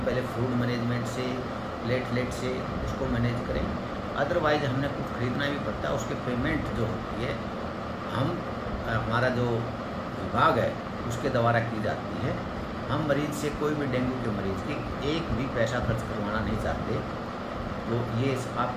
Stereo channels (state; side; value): identical; both; correlation 1.00